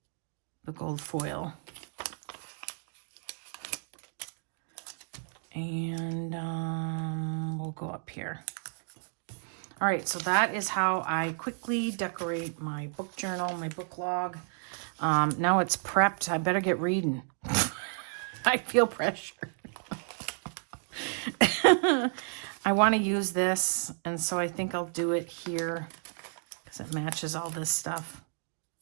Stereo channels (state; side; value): silent; left; 57 dB below the other